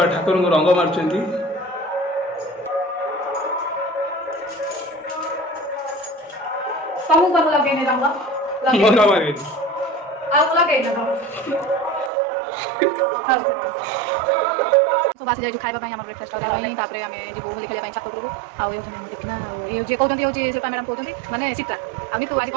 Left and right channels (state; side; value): drops out; left; at 12.1 s